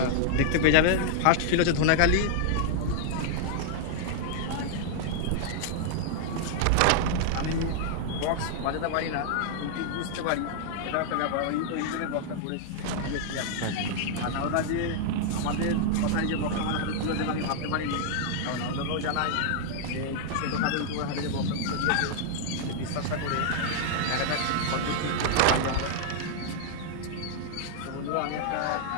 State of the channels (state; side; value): different; both; correlation -0.01